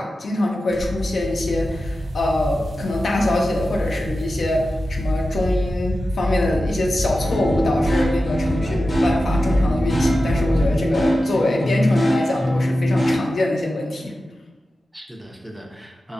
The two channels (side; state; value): both; normal; correlation 0.93